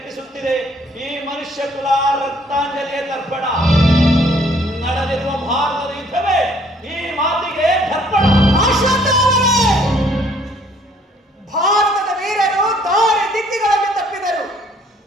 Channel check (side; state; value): both; normal; correlation 0.62